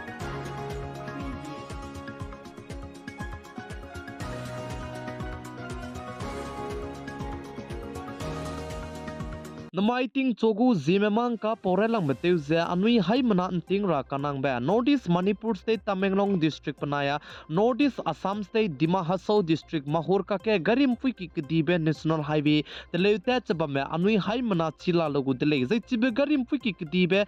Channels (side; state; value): both; identical; correlation 1.00